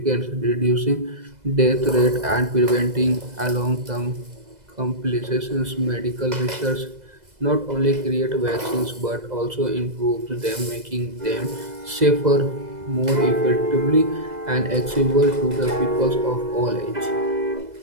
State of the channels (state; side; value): late; left; 2.0 ms